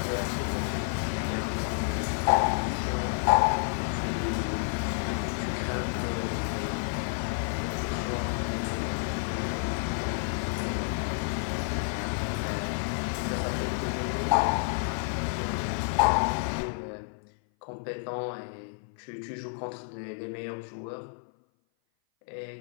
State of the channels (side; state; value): right; silent; 56 dB below the other